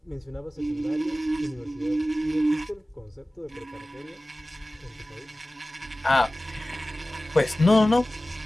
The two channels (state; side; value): normal; both; correlation 0.97